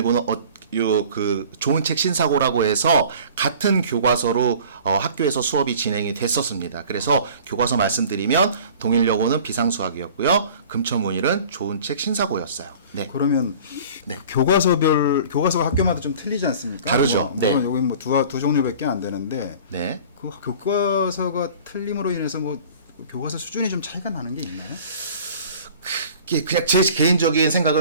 좋은 책 신사고라고 해서 같은 교과서로 학교에서 수업이 진행이 됐었습니다. 그래서 교과서 말씀드리면 동일여고는 비상수학이었고요. 금천문일은 좋은 책 신사고였어요. 네. 그러면 네. 교과서가 학교마다 좀 틀리지 않습니까? 다르죠. 네. 여기 뭐 두 종류밖에 안 되는데 네. 그 교과서가 틀림으로 인해서 뭐 교과서 수준이 좀 차이가 나는 게 있나요? 그냥 제 개인적인 생각을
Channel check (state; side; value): inverted; both; correlation -0.45